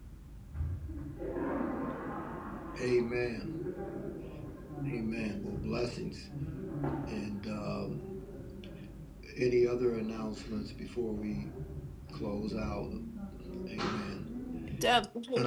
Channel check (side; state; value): both; identical; correlation 1.00